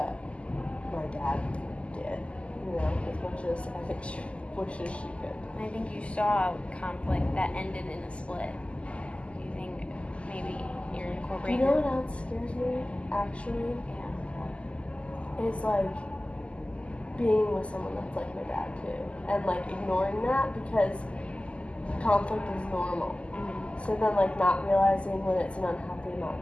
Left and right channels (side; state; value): right; late; 0.057 ms